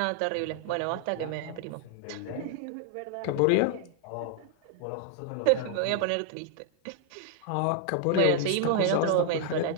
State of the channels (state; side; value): different; both; correlation 0.00